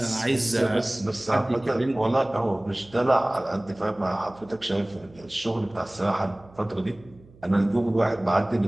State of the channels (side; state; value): right; noise; hum, 25 dB below the sound